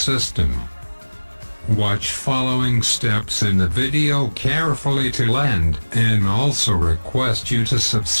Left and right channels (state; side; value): inverted; both; correlation -1.00